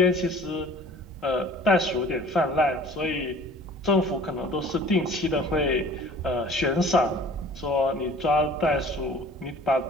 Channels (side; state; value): both; normal; correlation 0.47